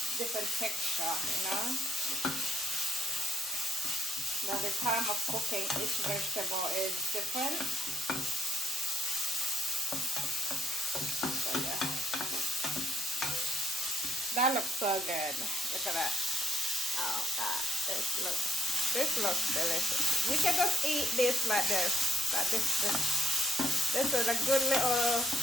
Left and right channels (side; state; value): both; normal; correlation 0.74